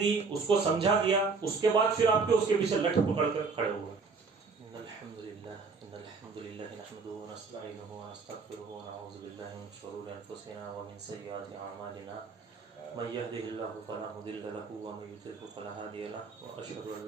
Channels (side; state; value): left; quieter; 4.6 dB